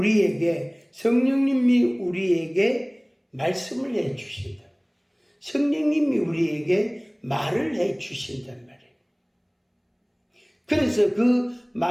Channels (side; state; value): both; identical; correlation 1.00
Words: 말씀을 해 주신다. 성령님이 우리에게 말을 해 주신단 말이에요. 그래서 그